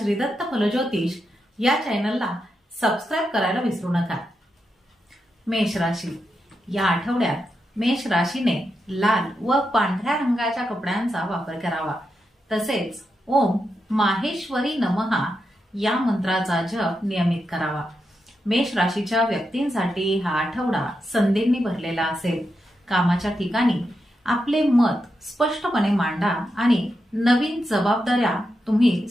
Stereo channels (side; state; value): both; normal; correlation 0.86